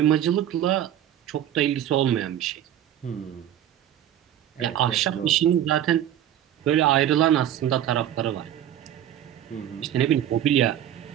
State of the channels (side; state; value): left; quieter; 11.1 dB